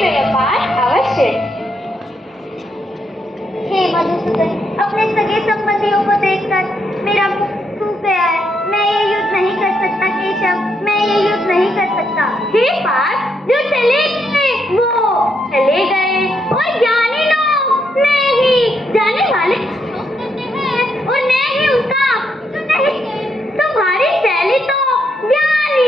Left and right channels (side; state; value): both; normal; correlation 0.78